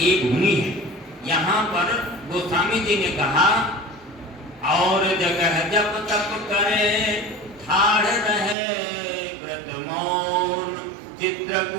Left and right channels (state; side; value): drops out; left; at 8.6 s